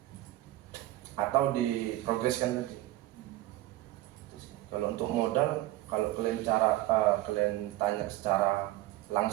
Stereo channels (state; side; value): quieter; left; 16.4 dB